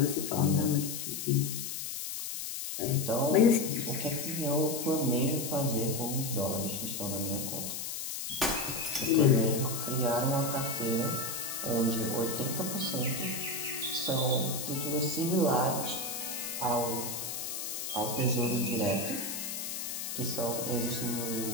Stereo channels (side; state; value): left; noise; hiss, 5 dB below the sound